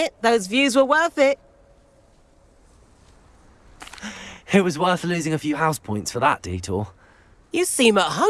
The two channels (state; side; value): identical; both; correlation 1.00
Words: those views were worth it. It was worth losing a few house points for that detour. You seem at